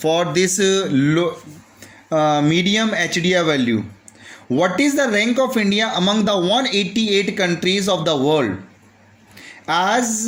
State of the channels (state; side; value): identical; both; correlation 1.00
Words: this medium HDI value. What is the rank of India among the 188 countries of the world?